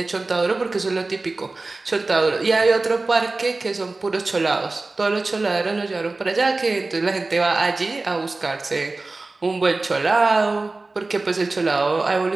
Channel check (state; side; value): quieter; left; 3.4 dB